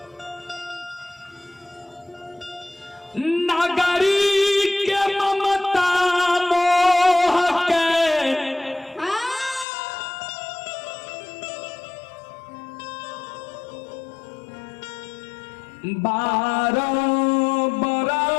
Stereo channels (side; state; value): right; drops out; at 9.7 s